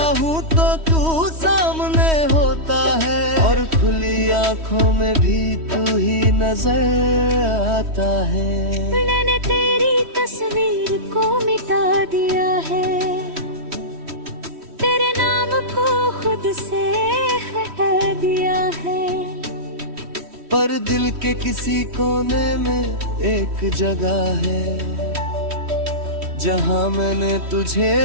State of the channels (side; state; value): left; late; 3.1 ms